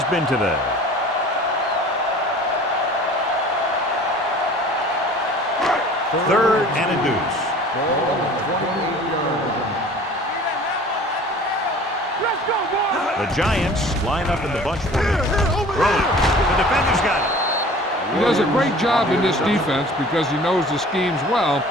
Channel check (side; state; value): both; normal; correlation 0.46